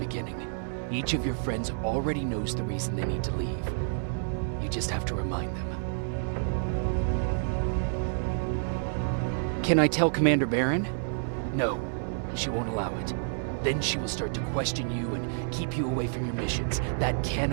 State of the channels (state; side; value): silent; left; 58 dB below the other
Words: Each of your friends already knows the reason they need to leave. You just have to remind them. Can I tell Commander Barron? No, she won't allow it. Then she will start to question you and keep you away from your missions. That